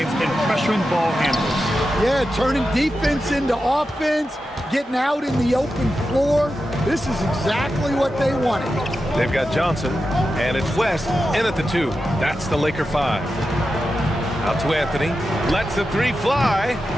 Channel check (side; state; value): both; normal; correlation 0.90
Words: and pressuring ball handlers. Yeah, turning defense into offense, getting out in the open floor. This is exactly what they wanted. They've got Johnson, and it's West in at the 2. That's the Laker 5. Out to Anthony. Lets the 3 fly.